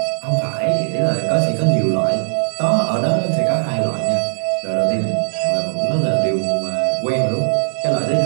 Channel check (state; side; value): silent; left; 65 dB below the other